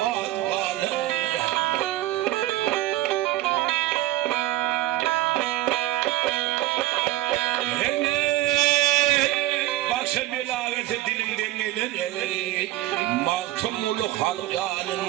kalır. Dilimden gelir mahtumulu halk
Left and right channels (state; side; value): quieter; left; 16.1 dB